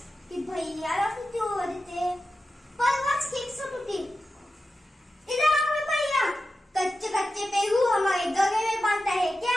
ती भैयाला किती ओरडते। परवाच केक सुट होती। इधर आओ भैया, कच्चे कच्चे पेरू हमारे गले में बांधता है क्या?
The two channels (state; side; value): normal; both; correlation 0.92